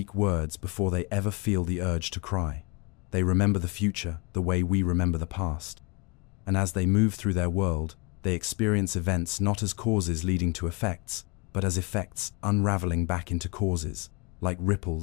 words before they ever feel the urge to cry. They remember the future the way we remember the past. And as they move through their world, they experience events not as causes leading to effects, but as effects unraveling back into causes, like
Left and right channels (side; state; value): right; quieter; 29.7 dB